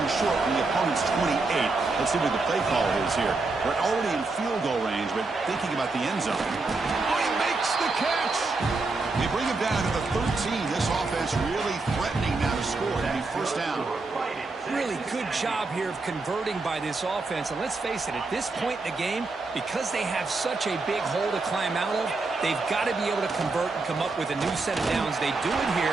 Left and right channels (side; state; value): left; quieter; 3.7 dB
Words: short from the opponent's 28. Let's see what the play call is here. We're already in field goal range, but thinking about the end zone. Oh, he makes the catch! They bring him down to the 13. This offense really threatening now to score. That'd be first down. Really good job here of converting by this offense. And let's face it, at this point in the game, because they have such a big hole to climb out of, they've got to be able to convert and come up with a new set of downs. They do it here.